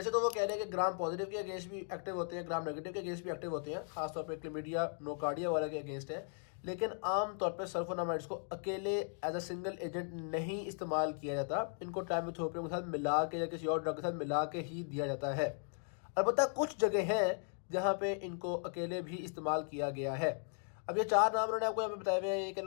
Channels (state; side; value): silent; right; 53 dB below the other